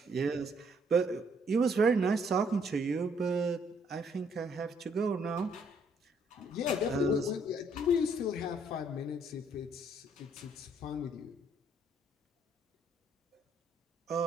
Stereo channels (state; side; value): normal; both; correlation 0.67